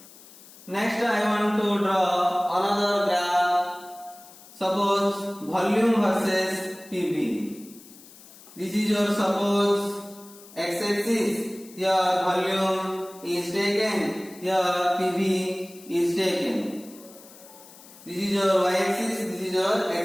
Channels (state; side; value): noise; left; hiss, 21 dB below the sound